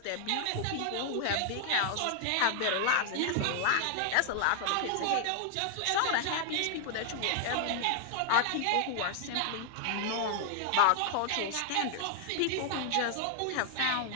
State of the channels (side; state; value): both; different; correlation 0.00